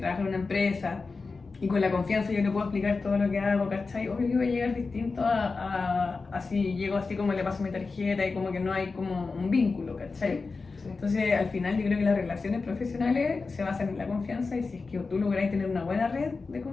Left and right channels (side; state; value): right; quieter; 4.2 dB